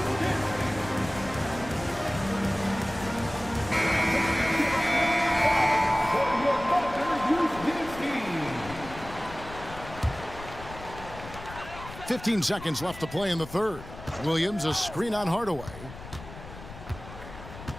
.15 seconds left to play in the third. Williams, a screen on Hardaway.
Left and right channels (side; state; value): left; noise; rumble, 14 dB below the sound